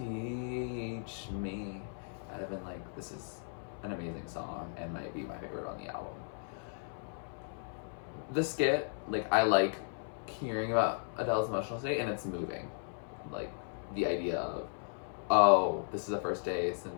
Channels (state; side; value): silent; right; 54 dB below the other